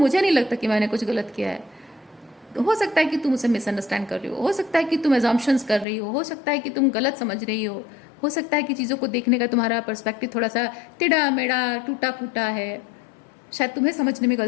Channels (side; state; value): right; drops out; at 5.9 s